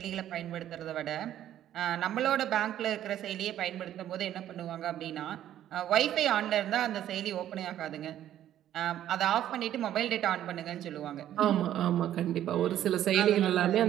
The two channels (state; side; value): quieter; left; 11.7 dB